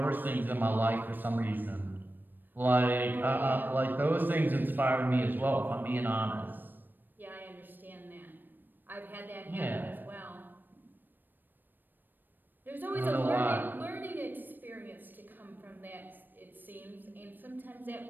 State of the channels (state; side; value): late; left; 0.092 ms